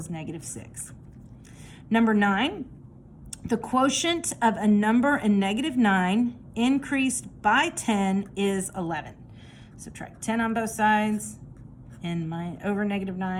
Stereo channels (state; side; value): identical; both; correlation 1.00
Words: negative 6. Number 9, the quotient of a number in negative 9 increased by 10 is 11. Subtract 10 on both sides, and over negative